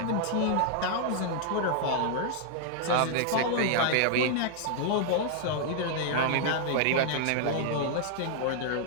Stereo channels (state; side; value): different; both; correlation 0.00